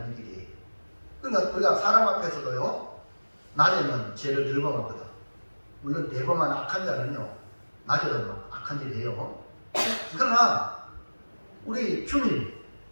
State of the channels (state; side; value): inverted; both; correlation -1.00